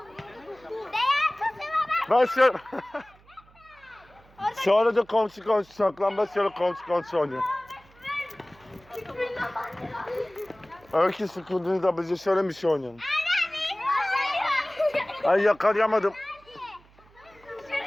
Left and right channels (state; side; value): noise; right; hum, 28 dB below the sound